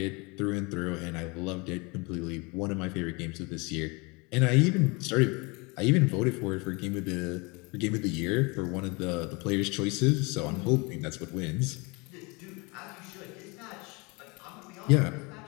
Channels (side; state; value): right; quieter; 27.9 dB